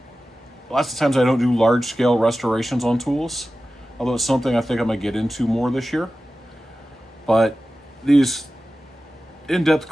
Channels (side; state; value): both; normal; correlation 0.95